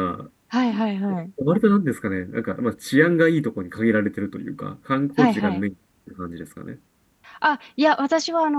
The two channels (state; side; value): identical; both; correlation 1.00